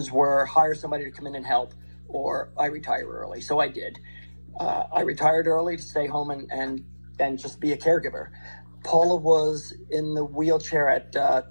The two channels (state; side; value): inverted; both; correlation -1.00